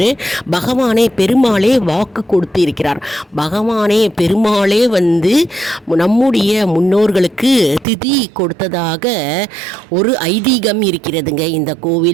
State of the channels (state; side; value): drops out; left; at 7.9 s